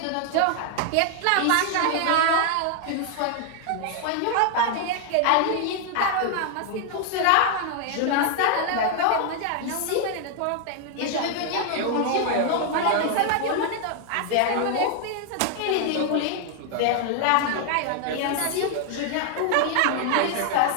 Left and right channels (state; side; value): different; both; correlation 0.00